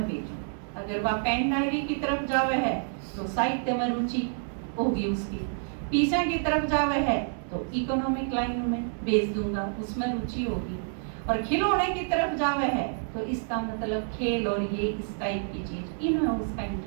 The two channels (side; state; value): left; silent; digital silence